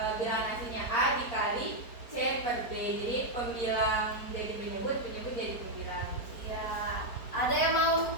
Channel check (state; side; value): late; right; 4.4 ms